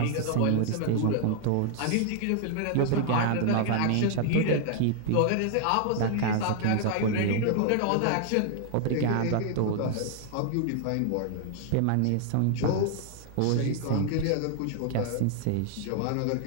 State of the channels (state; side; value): different; both; correlation 0.00